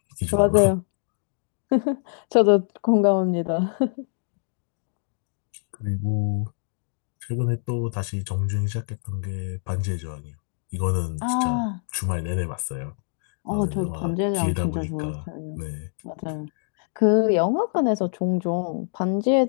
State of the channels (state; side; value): silent; right; 59 dB below the other